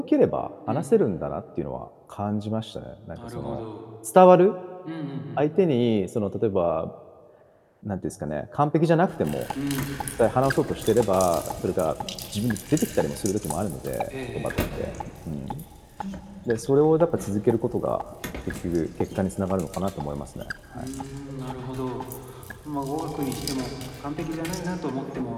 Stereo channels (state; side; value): identical; both; correlation 1.00